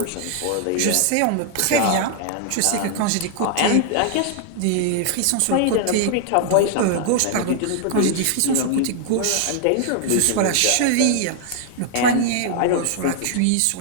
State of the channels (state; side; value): different; both; correlation 0.00